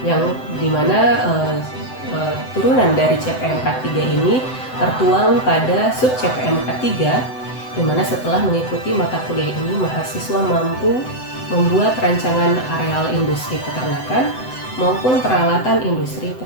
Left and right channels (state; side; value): late; right; 7.9 ms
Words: Yang dimana turunan dari CPMK 3 ini tertuang pada sub CPMK 3, dimana setelah mengikuti mata kuliah ini, mahasiswa mampu membuat rancangan areal industri peternakan maupun peralatan industri